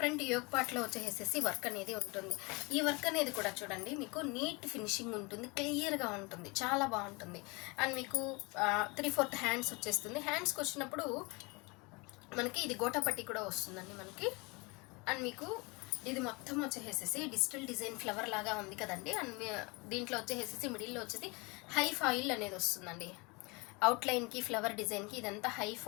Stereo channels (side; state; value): right; quieter; 27.4 dB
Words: యోక్ పార్ట్లో వచ్చేసేసి వర్క్ అనేది ఉంటుంది. ఈ వర్క్ అనేది కూడా చూడండి, మీకు నీట్ ఫినిషింగ్ ఉంటుంది, క్లియర్గా ఉంటుంది, చాలా బాగుంటుంది. అండ్ మీకు 3/4 హ్యాండ్స్ వచ్చేస్తుంది. హ్యాండ్స్కి వచ్చినప్పుడు మనకి ఇది గోటాపట్టి కూడా వస్తుందండి మనకి. అండ్ మీకు ఇది మొత్తం వచ్చేసేసి డిజిటల్ డిజైన్ ఫ్లవర్ లాగా ఉంది కదండి. అండ్ దీంట్లో వచ్చేసేసి మిడిల్లో వచ్చేసి హై ఫాయిల్ అనేది వస్తుందండి. అవుట్లైన్కి ఫ్లవర్ డిజైన్కి ఇదంతా హై